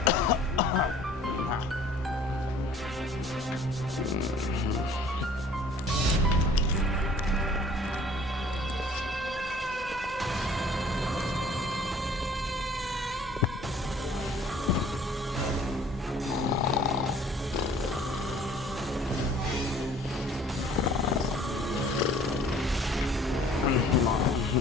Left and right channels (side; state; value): both; normal; correlation 0.53